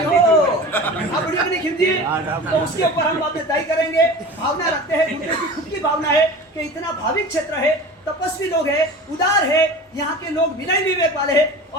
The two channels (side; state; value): both; normal; correlation 0.35